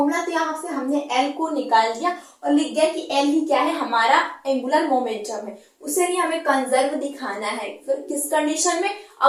तो यहाँ से हमने L को निकाल दिया और लिख दिया कि L ही क्या है, हमारा एंगुलर मोमेंटम है, उसे ही हमें कंजर्व दिखाना है। फिर किस कंडीशन में,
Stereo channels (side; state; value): both; identical; correlation 1.00